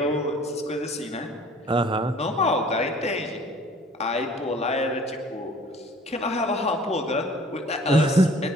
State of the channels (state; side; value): normal; both; correlation 0.51